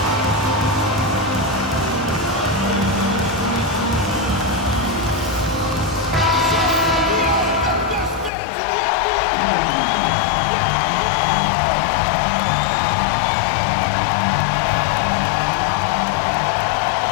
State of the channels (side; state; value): right; drops out; at 8.3 s